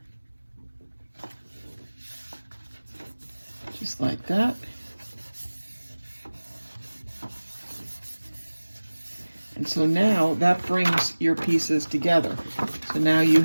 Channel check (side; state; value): both; inverted; correlation -1.00